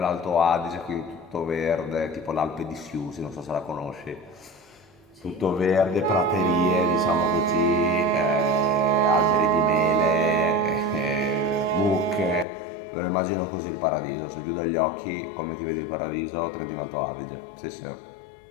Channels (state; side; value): drops out; right; at 12.5 s